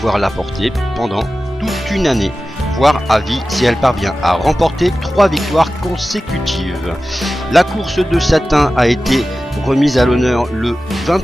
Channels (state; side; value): normal; both; correlation 0.95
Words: la porter pendant toute une année, voire à vie si elle parvient à remporter 3 victoires consécutives. La course de Satin a été remise à l'honneur le